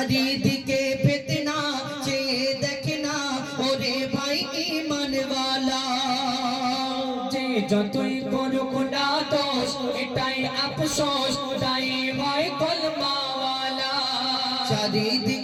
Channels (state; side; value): identical; both; correlation 1.00